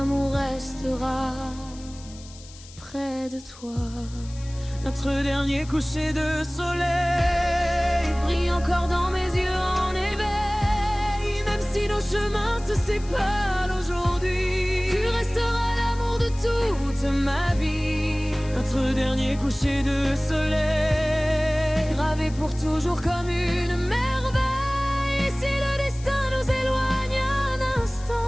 restera près de toi. Notre dernier coucher de soleil Brille encore dans mes yeux en éveil. Même si nos chemins se séparent aujourd'hui, tu resteras l'amour de toute ma vie. Notre dernier coucher de soleil Gravé pour toujours comme une merveille. Si le destin nous éloigne un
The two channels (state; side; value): noise; left; hiss, 20 dB below the sound